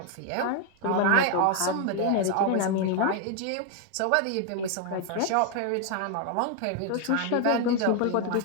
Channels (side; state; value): both; different; correlation 0.01